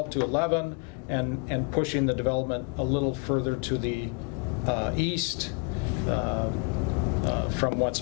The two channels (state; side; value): quieter; right; 33.6 dB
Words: to 11 and pushing the development a little further to the east from what's